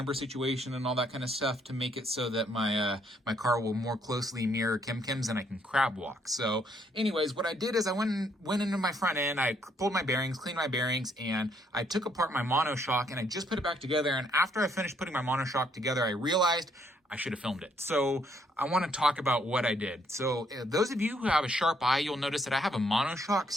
situation and all that kind of stuff to make it so that my my car will more closely mirror Kim's and I can crab walk. So anyways, what I did is I went into my front end, I pulled my bearings, cleaned my bearings, and I took apart my monoshock and I just put it back together. And after I finished putting my monoshock together, I realized I should have filmed it. So I want to talk about what I did. So those of you who have a sharp eye, you'll notice that I have a monoshock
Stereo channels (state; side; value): normal; both; correlation 0.69